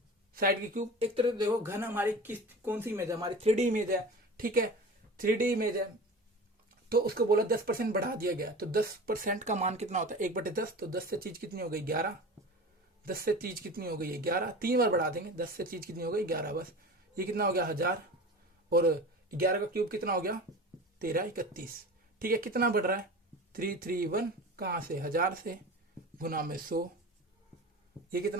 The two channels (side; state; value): both; normal; correlation 0.34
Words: एक तरह देखो घन हमारी कौन सी इमेज है, हमारी 3D इमेज है, ठीक है, 3D इमेज है, तो उसको बोला 10% बढ़ा दिया गया, तो 10% का मान कितना होता है 1/10, तो 10 से चीज कितनी हो गई 11, 10 से चीज कितनी हो गई 11, 3 बार बढ़ा देंगे, 10 से चीज कितनी हो गई 11, बस ये कितना हो गया 1000, और 11 का क्यूब कितना हो गया 1331, ठीक है, कितना बढ़ रहा है 331, कहां से 1000 से, गुना में 100, ये